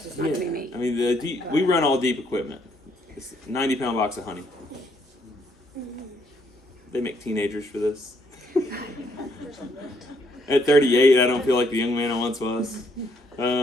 not going to be me. I mean, we run all deep equipment. It's a 90-pound box of honey. They make teenagers for this. At 38, I don't feel like the young man I once was.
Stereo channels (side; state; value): both; normal; correlation 0.70